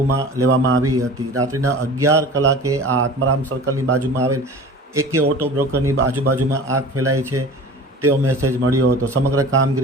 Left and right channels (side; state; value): both; normal; correlation 0.39